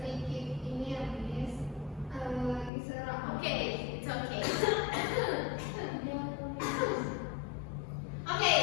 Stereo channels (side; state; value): right; drops out; at 2.7 s